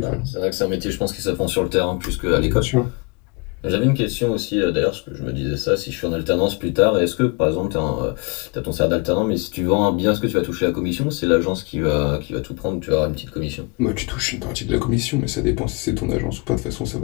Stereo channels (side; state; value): right; quieter; 29.5 dB